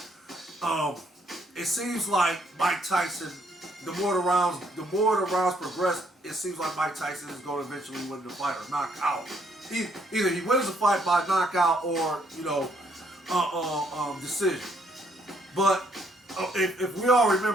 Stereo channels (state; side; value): normal; both; correlation 0.69